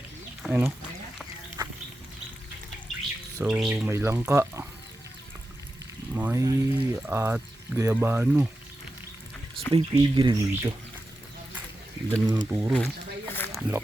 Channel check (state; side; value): normal; both; correlation 0.91